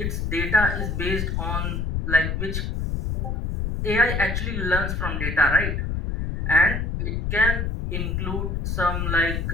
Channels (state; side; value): noise; left; rumble, 1 dB below the sound